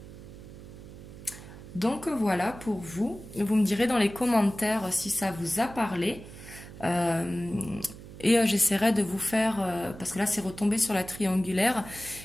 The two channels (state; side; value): noise; right; hum, 15 dB below the sound